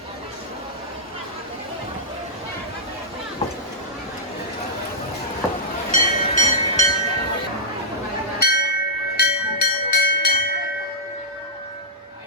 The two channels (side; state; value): both; normal; correlation -0.12